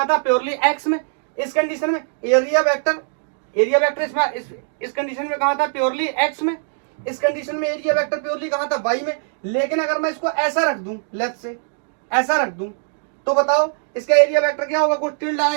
था? प्योरली एक्स में। इस कंडीशन में एरिया वेक्टर इस कंडीशन में कहां था? प्योरली एक्स में। इस कंडीशन में एरिया वेक्टर प्योरली कहां था? वाई में। लेकिन अगर मैं इसको ऐसा रख दूं, लेफ्ट से ऐसा रख दूं, तो बताओ इसका एरिया वेक्टर क्या होगा? कुछ टिल्ड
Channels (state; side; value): silent; left; digital silence